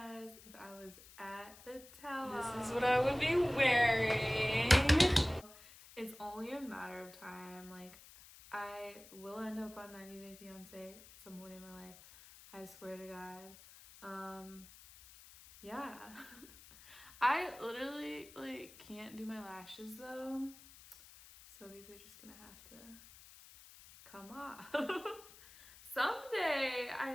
if I was at the tell-all. This is what I would be wearing. It's only a matter of time. Like, I will end up on 90 Day Fiance at some point in my life. I swear to God. Yeah. I literally, like, can't do my lashes, though. So these are just gonna have to come off. Someday, I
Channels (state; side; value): noise; left; hiss, 20 dB below the sound